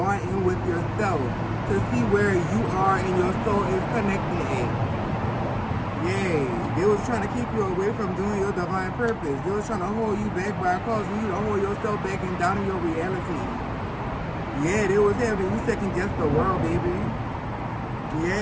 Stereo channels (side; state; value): both; identical; correlation 1.00